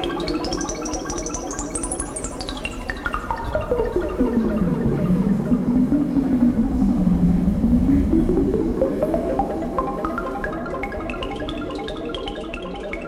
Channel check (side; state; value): both; identical; correlation 1.00